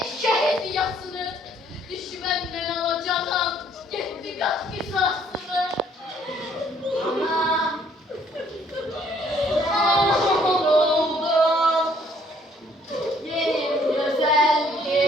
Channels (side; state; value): both; normal; correlation 0.63